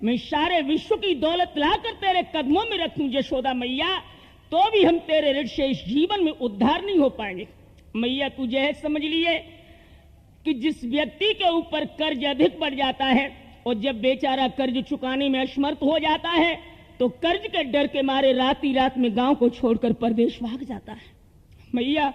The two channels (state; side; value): identical; both; correlation 1.00